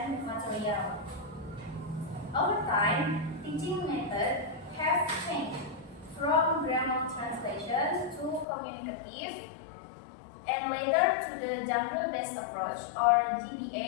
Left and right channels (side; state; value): right; drops out; at 8.5 s